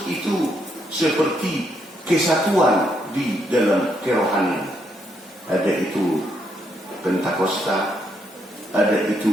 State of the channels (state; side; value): normal; both; correlation 0.76